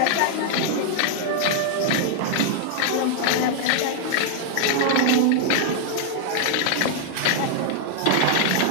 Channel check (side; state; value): both; different; correlation 0.00